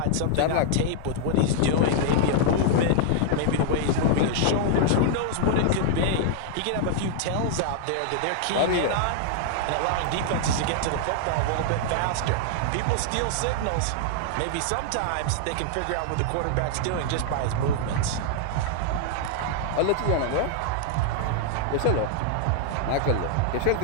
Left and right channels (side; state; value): both; different; correlation -0.01